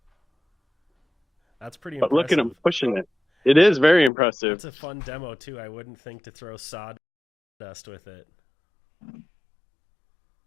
That's pretty But impressive. look at him pushing it. It is very impressive. It's a fun demo too. I wouldn't think to throw sawdust with it.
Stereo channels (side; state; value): right; drops out; at 4.1 s